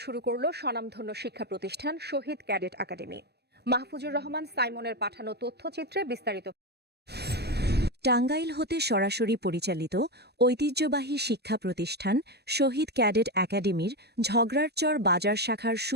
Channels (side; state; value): left; late; 0.48 ms